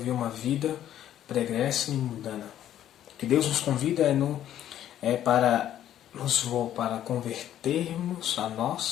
uma vida pregressa e mundana. O que Deus nos convida para convertermos a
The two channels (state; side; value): quieter; right; 11.4 dB